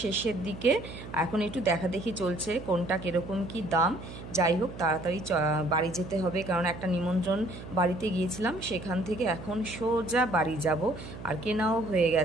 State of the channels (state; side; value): noise; right; hum, 12 dB below the sound